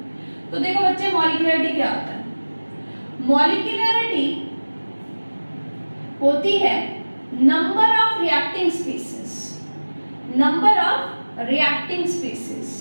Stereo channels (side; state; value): both; inverted; correlation -1.00